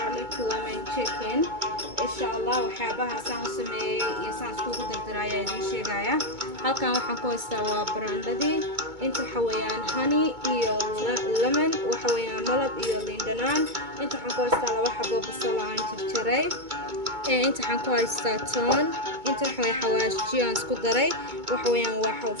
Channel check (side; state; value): left; late; 2.2 ms